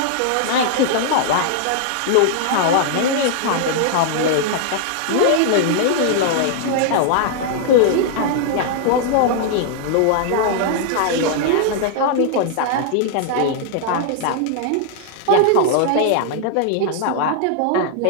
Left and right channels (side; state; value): both; different; correlation -0.01